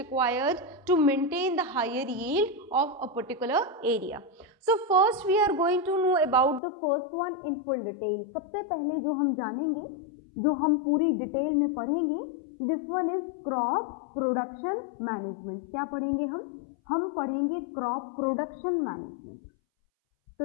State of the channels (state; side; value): drops out; right; at 6.6 s